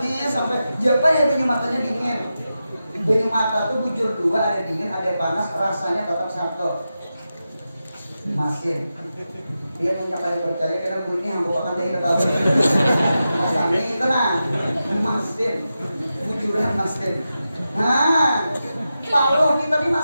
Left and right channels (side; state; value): both; inverted; correlation -0.91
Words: sampai jabai banyu matanya dingin. Banyu mata tuh bujur dua, ada dingin, ada panas, rasanya tetap satu. Masin. Dia punya kali percaya karena bunyi yang bukan dari tahu. Mas Ami tenang. Masin. Bujuran masin. Nah, kalau kita di